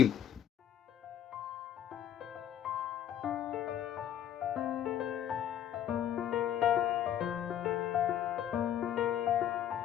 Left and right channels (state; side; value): quieter; right; 10.4 dB